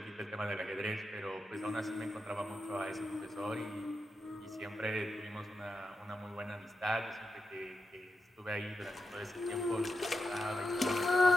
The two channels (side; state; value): both; normal; correlation 0.87